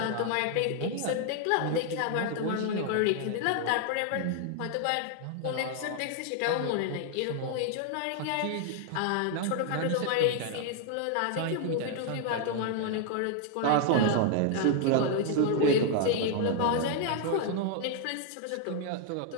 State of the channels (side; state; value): both; different; correlation 0.00